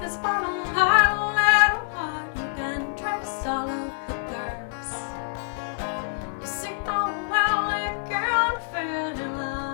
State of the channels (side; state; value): right; silent; digital silence